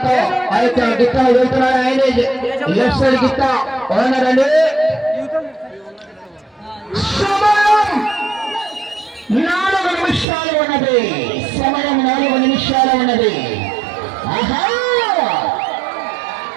ఆ యొక్క గిత్త వెళ్తున్నాడు. ఆయనే లెఫ్ట్ సైడ్ గిత్త ఓనరండి. 4 నిమిషాల నిమిషాలు ఉన్నది. సమయం 4 నిమిషాలు ఉన్నది. ఆహా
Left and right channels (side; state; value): left; drops out; at 10.2 s